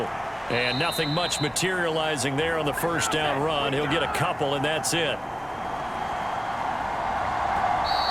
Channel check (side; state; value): both; identical; correlation 1.00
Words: And nothing much materializing there on the first down run. He'll get a couple, and that's it.